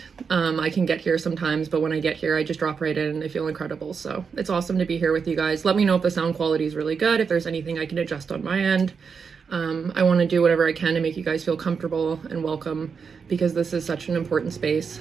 I can get here sometimes, but when I get here I just drop right in and I feel incredible. So it's awesome to be here with you guys. Let me know if the sound quality is really good, if there's anything I can adjust on my end. I want to do whatever I can to make you guys feel comfortable and welcome, because this is such an important space.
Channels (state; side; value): quieter; left; 5.8 dB